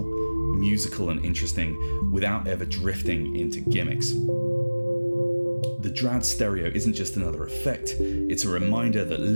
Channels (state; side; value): inverted; both; correlation -1.00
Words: musical and interesting without ever drifting into gimmicks. The Dradd stereo isn't just another effect, it's a reminder that